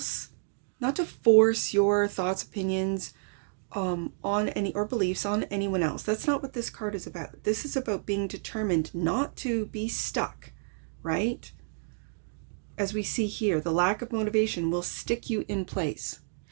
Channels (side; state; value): left; silent; digital silence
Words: not to force your thoughts, opinions on any, or beliefs on anyone else. That's not what this card is about. This is about being determined not to be stuck, right? As we see here, the lack of motivation will stick you in place.